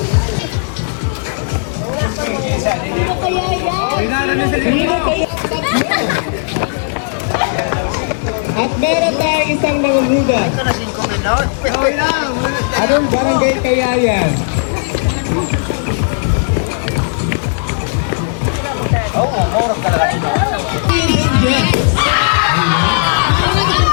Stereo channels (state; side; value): silent; right; digital silence